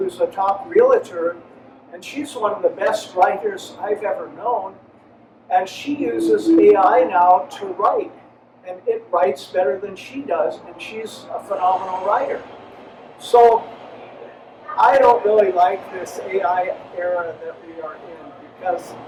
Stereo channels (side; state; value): both; identical; correlation 1.00